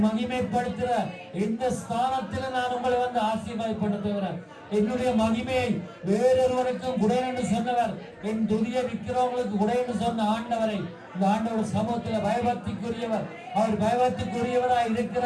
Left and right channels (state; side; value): identical; both; correlation 1.00